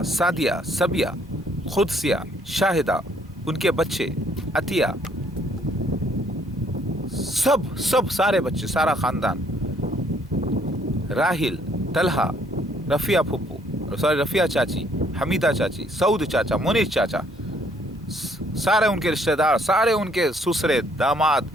सादिया, सबिया, खुदसिया, शाहिदा, उनके बच्चे, अतिया, सब सारे बच्चे, सारा ख़ानदान, राहिल, तलहा, रफ़िया फुप्पू, सॉरी रफ़िया चाची, हमीदा चाची, सऊद चाचा, मुनीर चाचा, سارے ان کے رشتہ دار، سارے ان کے سسرے داماد،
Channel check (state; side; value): normal; both; correlation 0.65